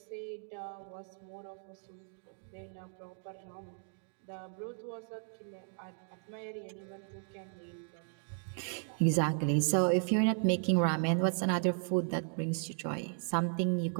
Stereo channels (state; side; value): silent; left; 54 dB below the other